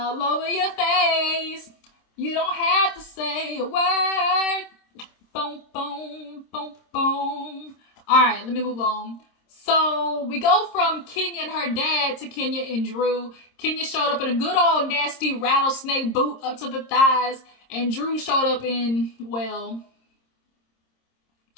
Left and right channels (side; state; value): right; late; 26 ms